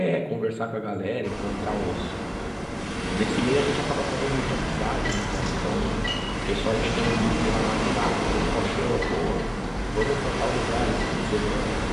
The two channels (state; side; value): identical; both; correlation 1.00